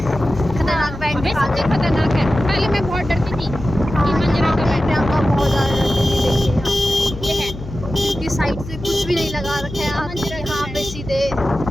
खतरनाक बैंड दिखाते हैं। खतरनाक है, पहले मैं बहुत डरती थी कि मंजरा का बैंड, प्रियंका बहुत ज़्यादा डरती थी। देखिए ये है क्योंकि साइड से कुछ भी नहीं लगा रखा है मंजीरा, यहाँ पे सीधे।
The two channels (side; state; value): left; noise; hum, 12 dB below the sound